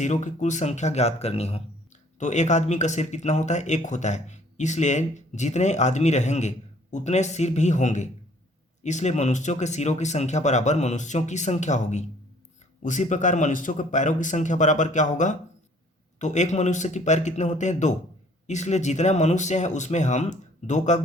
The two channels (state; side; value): normal; both; correlation 0.58